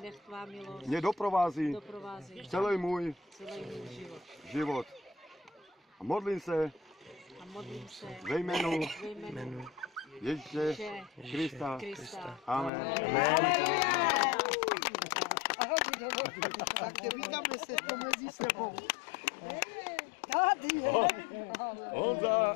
mě doprovází celý můj život. A modlím se ve jménu Ježíše Krista. Amen. Tak vítáme se to mezi sebou. Tady je.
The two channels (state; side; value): drops out; right; at 12.7 s